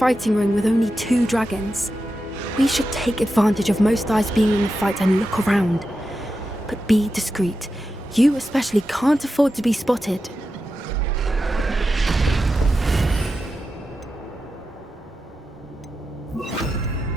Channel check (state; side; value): normal; both; correlation 0.90